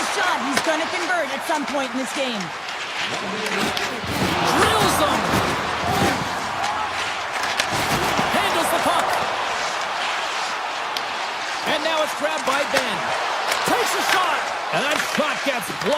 shot, he's going to convert at some point in this game. Drills them. Handles the puck. And now it's grabbed by Ben. Takes a shot. And that shot gets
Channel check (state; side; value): identical; both; correlation 1.00